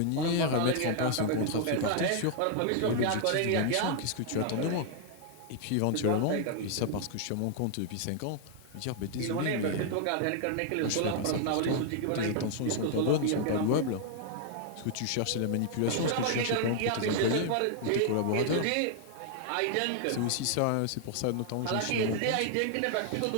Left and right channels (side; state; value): both; different; correlation 0.00